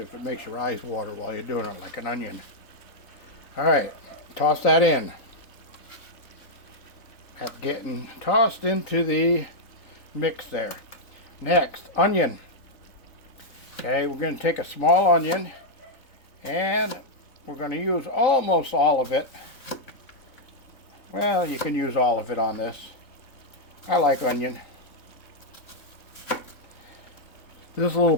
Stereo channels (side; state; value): right; late; 3.8 ms